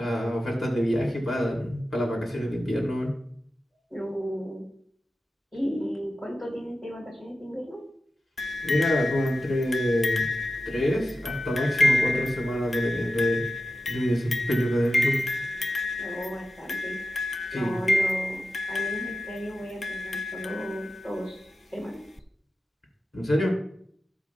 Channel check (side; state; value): both; normal; correlation 0.92